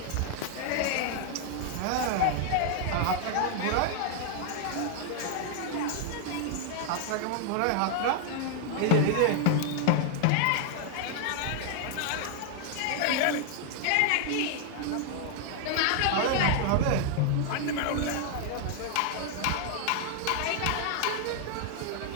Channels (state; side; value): different; both; correlation 0.00